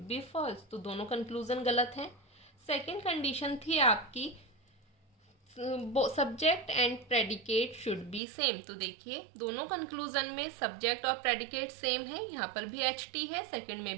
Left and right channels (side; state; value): left; drops out; at 8.2 s